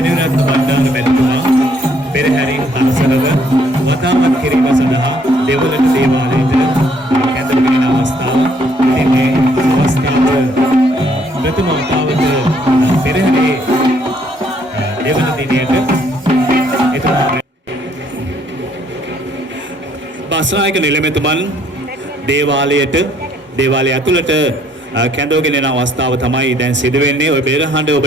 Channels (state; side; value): normal; both; correlation 0.66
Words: බණ්ඩාර මැතිතුමා පෙරහැරින් හරසරව වතාවත් කිරීම සඳහා දෙවලට දේවාලයට කැඳවගෙන අවස්ථාව. ඉතින් මේ අවස්ථාව ප්‍රථම වතාවට පෙරහැරේ දෙවන දිනයට බස්නායක නිලමේතුමන් දේවාලය ඇතුළට කැඳවගෙන යන අවස්ථාව තමයි දැන් සිදු වෙන්නේ. ඔය පෙරහඬ